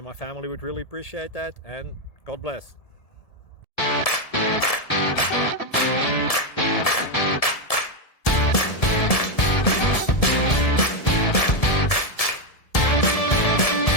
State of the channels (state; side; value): late; right; 1.7 ms